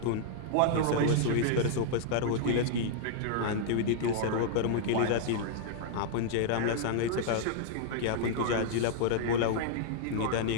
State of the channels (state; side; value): different; both; correlation -0.01